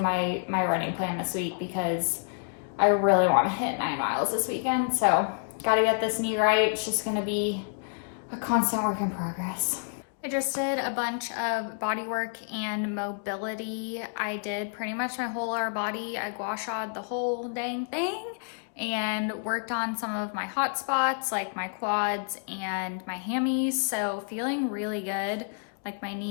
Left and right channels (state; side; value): silent; right; digital silence